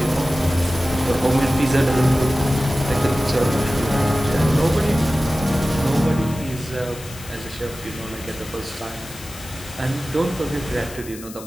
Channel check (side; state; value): left; noise; hiss, 16 dB below the sound